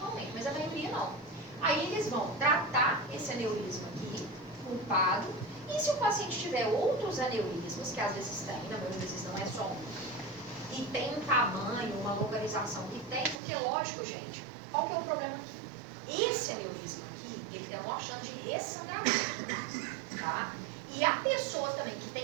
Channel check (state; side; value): drops out; left; at 13.4 s